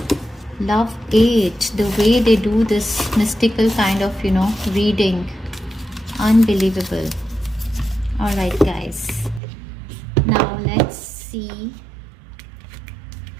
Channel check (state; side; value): drops out; left; at 9.4 s